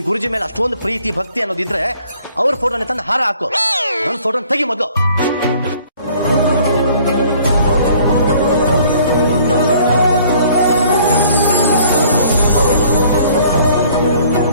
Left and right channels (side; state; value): both; inverted; correlation -0.56